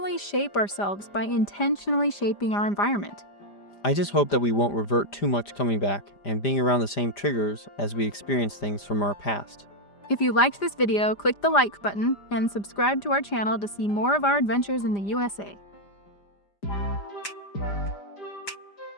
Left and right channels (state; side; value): late; right; 5.0 ms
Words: shape ourselves by intentionally shaping our environment. I just hope that we won't revert too much coming back and being around the same triggers as we experience things from our past. If you liked this video, click the like button and subscribe to our channel to see more of our adventures in the USA.